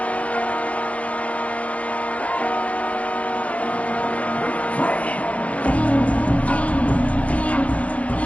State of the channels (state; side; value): late; right; 0.065 ms